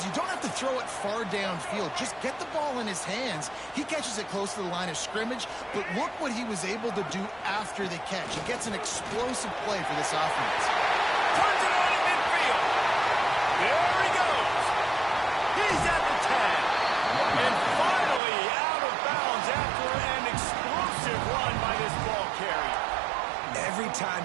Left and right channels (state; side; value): drops out; left; at 18.2 s